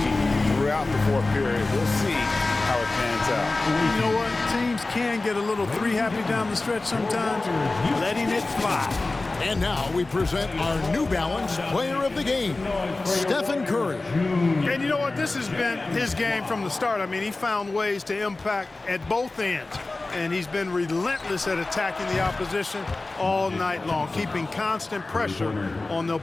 throughout the 4th period. We'll see how it pans out. You know what? Teams can get a little three-happy down the stretch sometimes, letting it fly. And now we present our New Balance player of the game, Stephen Curry. And you know what? This has been his game from the start. I mean, he found ways to impact at both ends. And he's been relentless at attacking the opposition all night long, keeping constant pressure on the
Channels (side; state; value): right; quieter; 3.2 dB